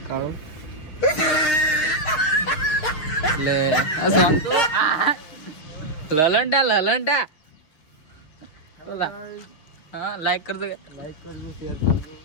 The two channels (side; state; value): right; late; 6.5 ms